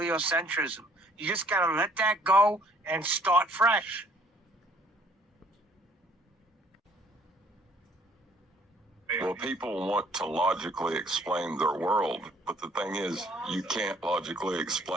You just gotta let that go and start fresh. Well, people want to logically explain their world, but the thing is, you can't logically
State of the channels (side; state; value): both; normal; correlation 0.60